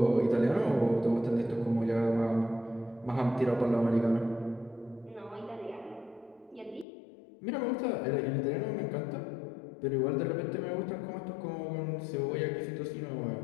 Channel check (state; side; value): drops out; right; at 6.9 s